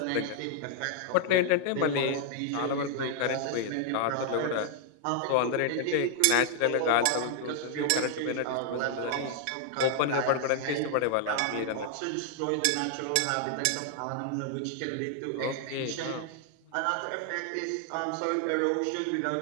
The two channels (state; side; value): different; both; correlation 0.00